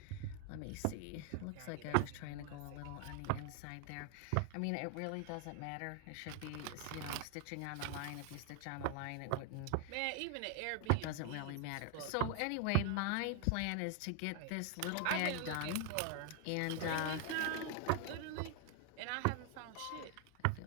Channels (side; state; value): both; different; correlation 0.00